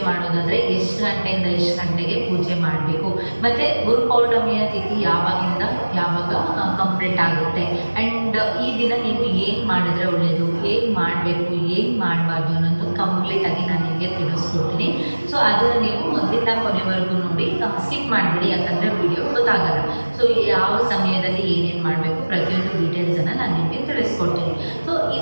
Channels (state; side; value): inverted; both; correlation -1.00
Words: ಮಾಡೋದಾದರೆ ಎಷ್ಟು ಗಂಟೆಯಿಂದ ಎಷ್ಟು ಗಂಟೆಗೆ ಪೂಜೆ ಮಾಡಬೇಕು, ಮತ್ತು ಗುರುಪೌರ್ಣಮಿಯ ತಿಥಿ ಯಾವಾಗಿಂದ ಯಾವಾಗ ಕಂಪ್ಲೀಟ್ ಆಗುತ್ತೆ, ಆ್ಯಂಡ್ ಈ ದಿನ ನೀವು ಏನು ಮಾಡಿದ್ರೆ ಒಳ್ಳೆಯದು, ಏನು ಮಾಡಬೇಕು, ಏನು ಮಾಡಬಾರ್ದು ಅನ್ನೋದು ಕಂಪ್ಲೀಟಾಗಿ ನಾನು ನಿಮಗೆ ತಿಳಿಸ್ಕೊಡ್ತೀನಿ. ಸೊ ಅದನ್ನು ನೀವು ಮೊದಲಿಂದ ಕೊನೆವರೆಗೂ ನೋಡಿ, ಸ್ಕಿಪ್ ಮಾಡಿಬಿಡಿ, ಯಾಕಂದರೆ ವಿಡಿಯೋ ಗೊತ್ತಾಗಲ್ಲ. ಸೊ ಯಾವ ಸಮಯದಲ್ಲಿ ಏನೇನು ಮಾಡಬೇಕು ಪ್ರತಿಯೊಂದು ಡೀಟೇಲ್ಸನ್ನು ನಾನು ನಿಮಗೆ ತಿಳಿಸ್ಕೊಡ್ತೀನಿ. ಸೊ